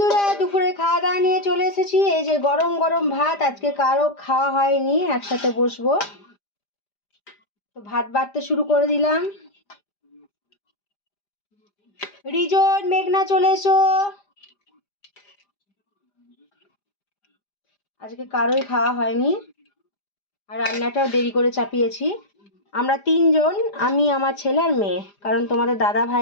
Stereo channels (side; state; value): right; late; 5.0 ms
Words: দুপুরে খাওয়া দাওয়া নিয়ে চলে এসেছি। এই যে গরম গরম ভাত, আজকে কারো খাওয়া হয়নি, একসাথে বসবো। তো ভাত বাড়তে শুরু করে দিলাম। রিজন, মেঘনা চলে এসো। আজকে কারোই খাওয়া হয়নি, আর রান্নাটাও দেরি করে চাপিয়েছি। আমরা তিনজন, আমি, আমার ছেলে আর মেয়ে, কারণ তোমাদের দাদা